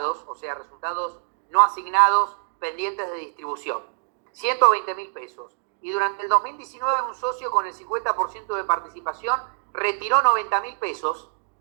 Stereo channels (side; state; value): left; silent; digital silence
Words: o sea, resultados no asignados pendientes de distribución, 120.000 pesos, y durante el 2019 un socio con el 50% de participación retiró 90.000 pesos,